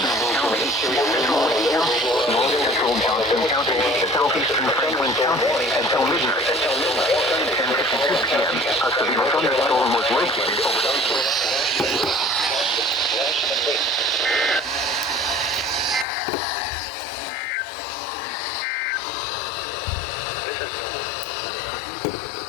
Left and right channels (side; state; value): right; drops out; at 16.1 s